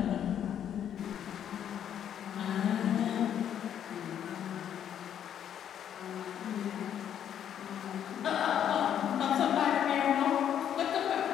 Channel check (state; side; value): quieter; right; 9.6 dB